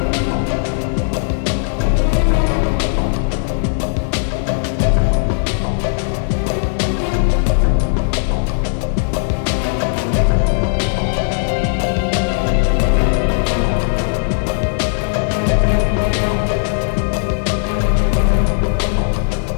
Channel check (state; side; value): silent; right; digital silence